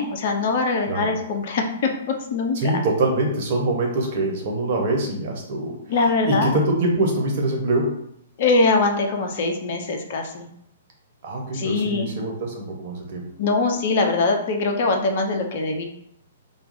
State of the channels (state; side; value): inverted; both; correlation -0.36